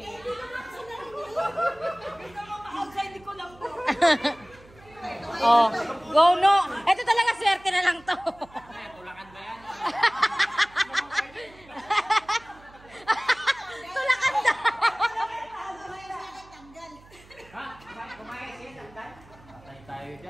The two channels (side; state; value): right; noise; hum, 24 dB below the sound